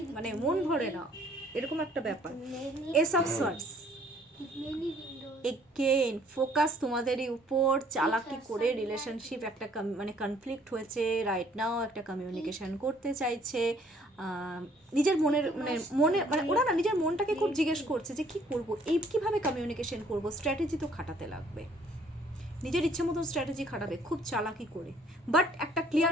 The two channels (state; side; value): normal; both; correlation 0.60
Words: মানে মন ভরে না, এরকম একটা ব্যাপার। S of swords, again focus তোমাদেরই উপর, চালাকি করে রিলেশনশিপ একটা মানে কনফ্লিক্ট হয়েছে রাইট নাও, একটা কমিউনিকেশন করতে চাইছে, নিজের মনের মানে ওরা না নিজের মনটাকে খুব জিজ্ঞেস করছে যে কি করব, এই কিভাবে কমিউনিকেশন করব, স্ট্র্যাটেজি তো খাটাতে লাগবে, নিজের ইচ্ছে মতো স্ট্র্যাটেজি খাটাবে খুব চালাকি করে, বাট একটা